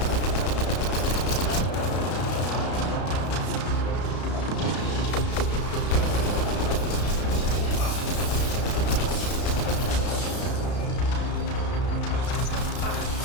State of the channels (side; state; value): right; late; 33 ms